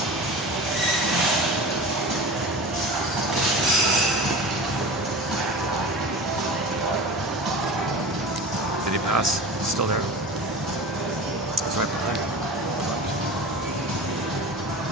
Did he pass? He's still there. He's right behind me.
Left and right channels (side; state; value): both; normal; correlation 0.33